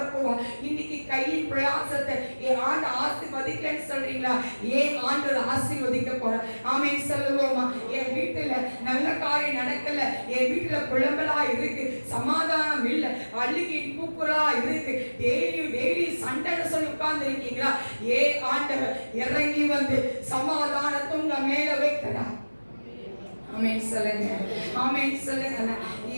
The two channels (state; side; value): inverted; both; correlation -1.00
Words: இன்னைக்கு கையின் பிரயாசத்தை ஏன் ஆண்டு ஆசீர்வதிக்கலன்னு சொல்றீங்களா? ஏன் ஆண்டவர் ஆசீர்வதிக்க போறார். ஆமென் சொல்லுவோமா? என் வீட்டுல நல்ல காரியம் நடக்கல, என் வீட்டுல புலம்பலா இருக்கு, சமாதானம் இல்ல, அழுகி கூக்குறா இருக்கு, டெய்லி சண்டைன்னு சொல்லி உட்கார்ந்து இருக்கீங்களா? ஏ ஆண்டவர் இறங்கி வந்து சமாதானத்தை உங்க மேல வைக்கிறார். ஆமென் சொல்லுங்க. ஆமென் சொல்லுங்க.